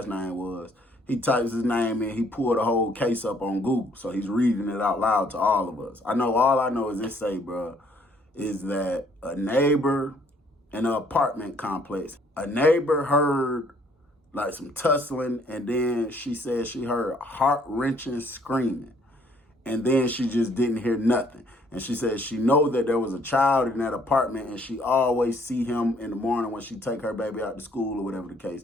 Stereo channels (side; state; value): both; normal; correlation 0.63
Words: name was. He types his name in. He pulled the whole case up on Google, so he's reading it out loud to all of us. All I know is this say, bro, is that a neighbor in an apartment complex, a neighbor heard like some tussling, and then she said she heard heart-wrenching screaming, and then she just didn't hear nothing. And she said she know that there was a child in that apartment, and she always see him in the morning when she take her baby out to school or whatever the